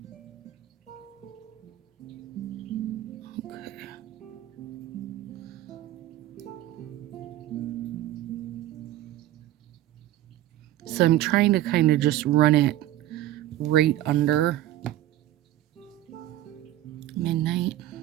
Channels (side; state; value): left; quieter; 13.9 dB